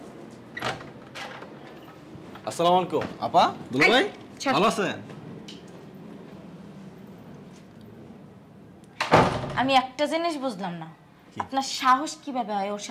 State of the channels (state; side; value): identical; both; correlation 1.00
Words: আসসালামু আলাইকুম আপা, দুলা ভাই, ভালো আছেন? আমি একটা জিনিস বুঝলাম না, আপনার সাহস কিভাবে হয় ওর